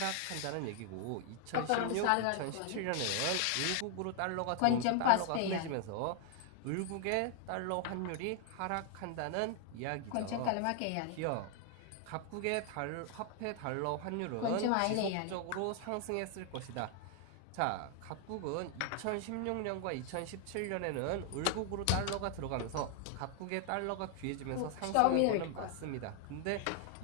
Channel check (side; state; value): both; different; correlation 0.00